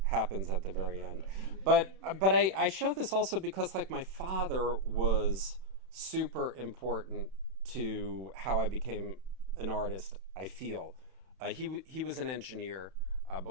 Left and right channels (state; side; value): late; left; 31 ms